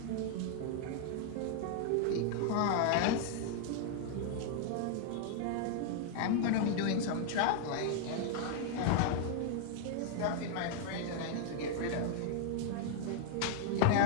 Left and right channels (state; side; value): different; both; correlation 0.00